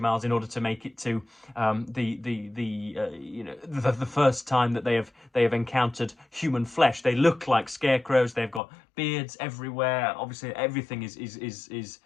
miles in order to make it to the first time that they have encountered human flesh. They look like scarecrows. They've got beards everywhere. Obviously, everything is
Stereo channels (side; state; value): right; drops out; at 8.6 s